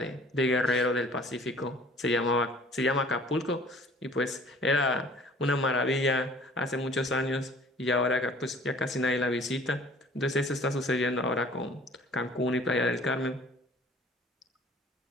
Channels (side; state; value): both; normal; correlation 0.51